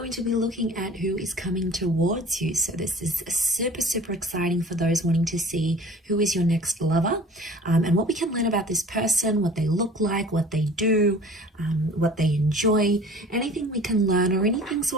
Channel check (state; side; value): normal; both; correlation 0.45